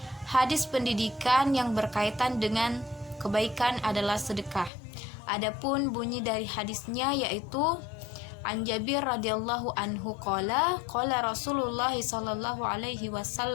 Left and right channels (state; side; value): drops out; right; at 4.7 s